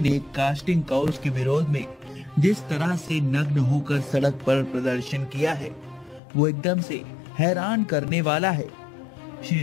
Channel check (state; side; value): drops out; right; at 6.2 s